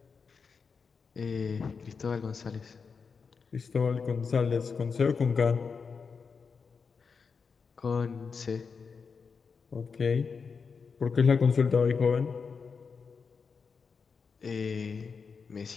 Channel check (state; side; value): quieter; right; 5.4 dB